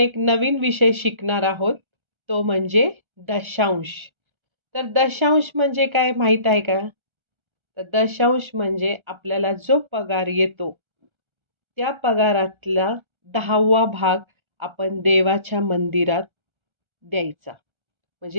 नवीन विषय शिकणार आहोत, तो म्हणजे दशांश. तर दशांश म्हणजे काय माहीत आहे का? तर दशांश म्हणजे आपल्याला जो पगार येतो, त्या पगारातला 10वा भाग आपण देवाच्या मंदिरात द्यायचा.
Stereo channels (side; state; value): left; late; 1.3 ms